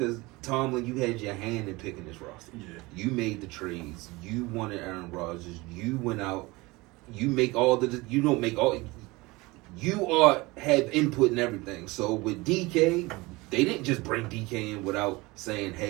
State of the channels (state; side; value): quieter; left; 22.6 dB